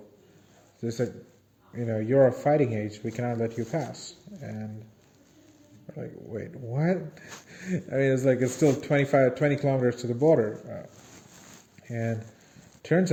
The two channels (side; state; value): both; identical; correlation 1.00